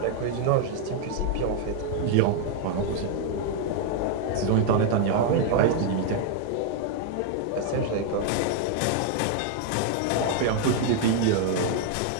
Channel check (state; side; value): different; both; correlation 0.00